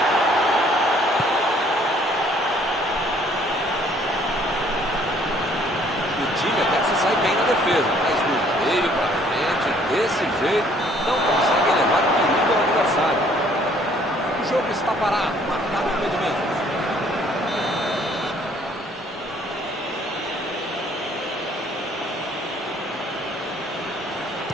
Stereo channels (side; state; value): both; normal; correlation 0.60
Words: O time até que se sai bem na defesa, mas do meio para frente, desse jeito, não consegue levar perigo ao adversário. O jogo está parado, marcado o impedimento.